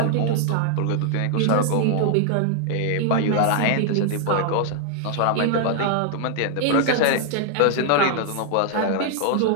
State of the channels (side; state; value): both; different; correlation 0.00